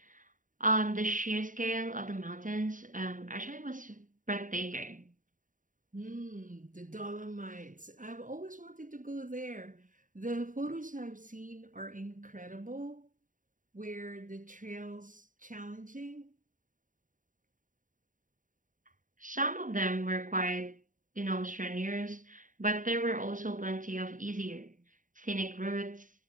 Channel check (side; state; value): left; late; 0.38 ms